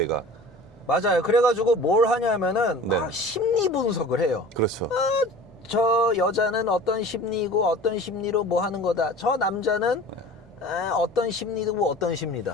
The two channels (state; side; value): normal; both; correlation 0.41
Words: 맞아요. 그래가지고 뭘 하냐면은 막 네. 심리 분석을 해요. 그렇죠. 저 여자는 어떤 심리고 어떤 심리로 뭐 하는 거다. 저 남자는 어떤 심리고 어떤